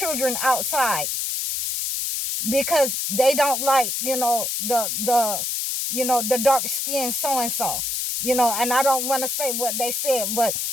outside because they don't like, the dark skin so and so. And I don't want to say what they said, but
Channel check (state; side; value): noise; left; hiss, 1 dB below the sound